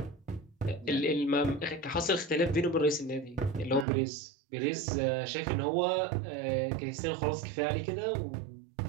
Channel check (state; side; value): drops out; left; at 3.9 s